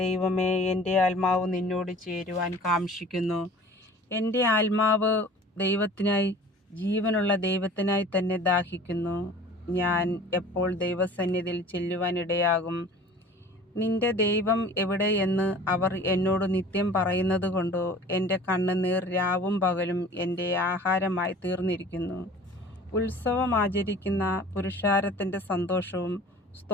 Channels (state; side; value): normal; both; correlation 0.45